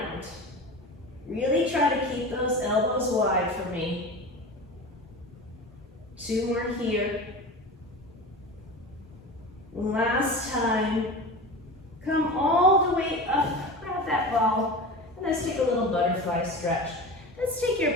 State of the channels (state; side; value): normal; both; correlation 0.31